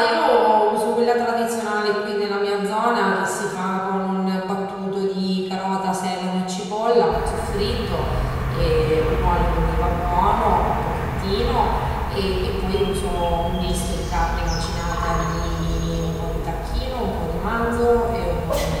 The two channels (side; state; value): both; identical; correlation 1.00